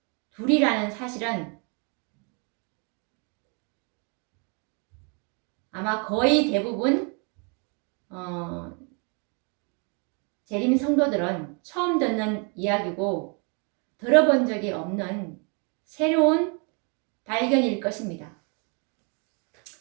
둘이라는 사실은 아마 거의 대부분 재림 성도들은 처음 듣는 이야기고 들어본 적이 없는 새로운 발견일 것입니다.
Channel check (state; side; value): quieter; left; 36.2 dB